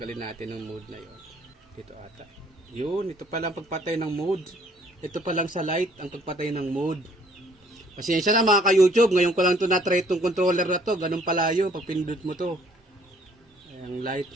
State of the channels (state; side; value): normal; both; correlation 0.60